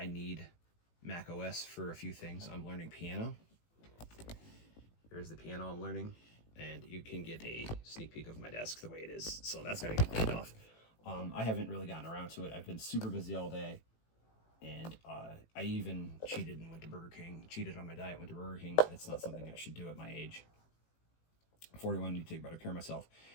need Mac OS for a few things. I'm learning piano. Here's the piano I'm learning, and you can get a sneak peek of my desk the way it is. So that's got to get cleaned off. I haven't really gotten around to it. I've been super busy all day. And I even cheated and went to Burger King. Cheated on my diet, went to Burger King. It's not something I should do at my age. 41, I need to take better care of myself.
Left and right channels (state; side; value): late; right; 18 ms